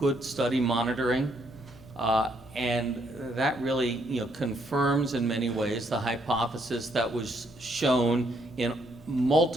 study monitoring, and that really confirms in many ways the hypothesis that was shown in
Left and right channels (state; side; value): noise; left; hum, 24 dB below the sound